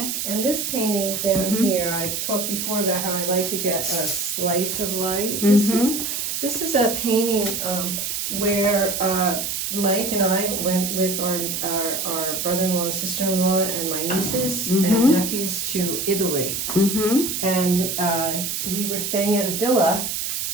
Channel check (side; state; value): right; noise; hiss, 2 dB below the sound